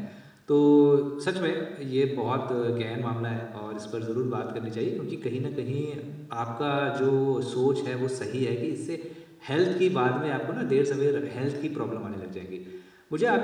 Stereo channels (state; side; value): identical; both; correlation 1.00